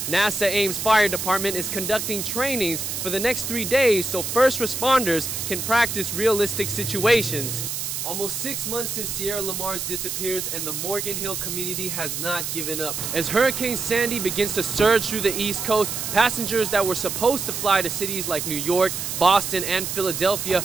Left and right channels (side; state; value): right; noise; hiss, 4 dB below the sound